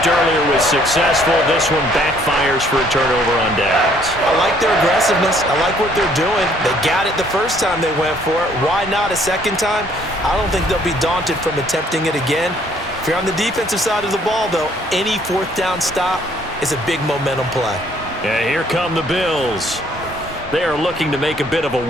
earlier was successful. This one backfires for a turnover on downs. I like their aggressiveness. I like what they're doing. They got it the first time they went for it. Why not a second time? I don't think they'll be daunted from attempting it again. If you're on the defensive side of the ball, though, any 4th down stop is a big momentum play. Yeah, here come the Bills. They are looking to make a bit of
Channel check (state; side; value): normal; both; correlation 0.63